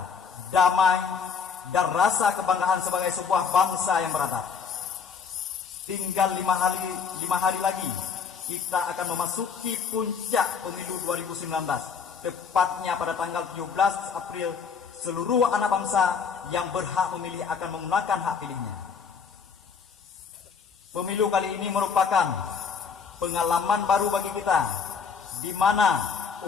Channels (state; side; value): quieter; right; 6.1 dB